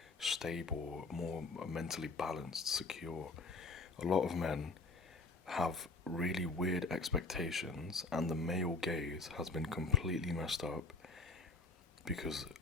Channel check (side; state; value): right; quieter; 3.3 dB